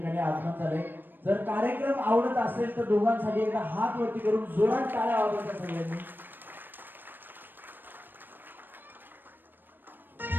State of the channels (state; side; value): late; left; 0.094 ms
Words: आगमन झाले. जर कार्यक्रम आवडत असेल तर दोघांसाठी एकदा हात वरती करून जोरात टाळ्या वाजवायच्या सगळ्यांनी.